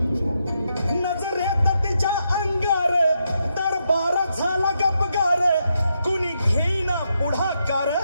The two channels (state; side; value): inverted; both; correlation -0.81